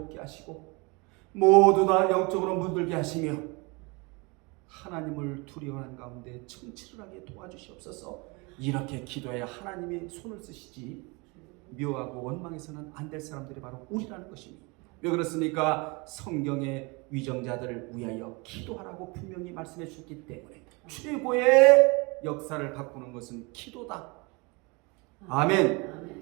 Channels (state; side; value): quieter; left; 28.1 dB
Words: 하시고 모두 다 영적으로 물들게 하시며 하나님을 두려워하는 가운데 청취를 하게 도와주시옵소서. 이렇게 기도해야 하나님이 손을 쓰시지 미워하고 원망해서는 안 될 사람들이 바로 우리라는 것입니다. 왜 그렇습니까? 성경의 위정자들을 위하여 기도하라고 분명히 말씀해 주셨기 때문에 최고의 역사를 바꾸는 것은 기도다.